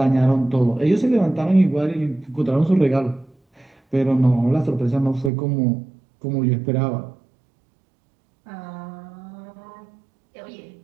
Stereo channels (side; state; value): left; drops out; at 5.3 s